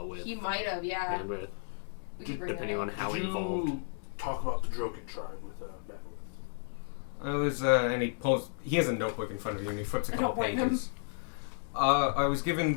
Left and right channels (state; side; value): silent; right; digital silence